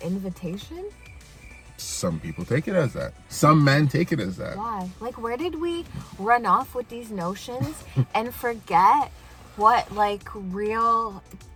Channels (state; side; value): identical; both; correlation 1.00